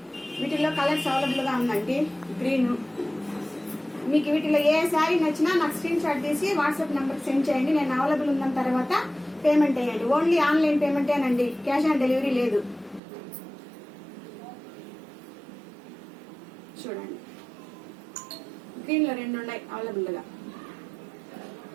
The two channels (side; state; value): left; drops out; at 13.0 s